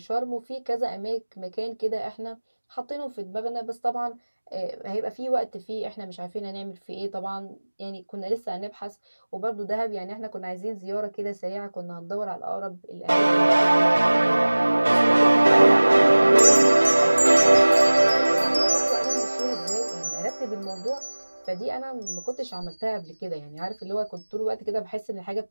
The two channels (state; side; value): inverted; both; correlation -1.00